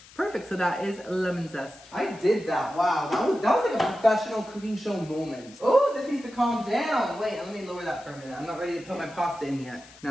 Perfect, so that is lemon zest. I did that, wow. That was like a professional cooking show moment. Oh, this needs to calm down. Wait, let me lower that for a minute. I'm not ready to put my pasta in yet. Now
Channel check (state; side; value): noise; left; hiss, 22 dB below the sound